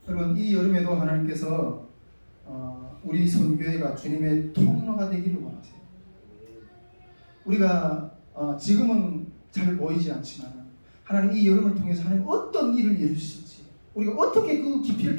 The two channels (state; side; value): inverted; both; correlation -1.00